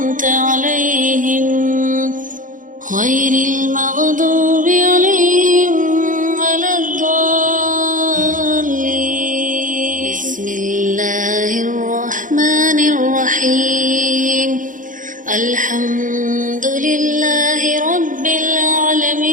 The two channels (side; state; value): left; late; 0.38 ms